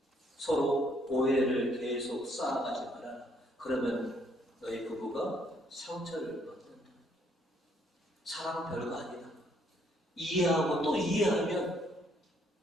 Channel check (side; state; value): both; normal; correlation 0.67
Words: 서로 오해를 계속 쌓아가지 마라. 그러면 너희 부부가 상처를 받는다. 사랑 별거 아니다. 이해하고 또 이해하면